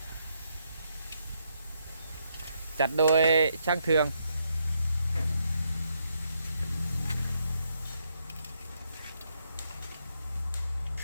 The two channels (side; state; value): both; inverted; correlation -0.77